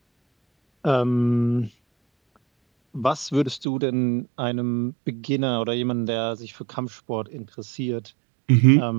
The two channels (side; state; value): left; drops out; at 3.7 s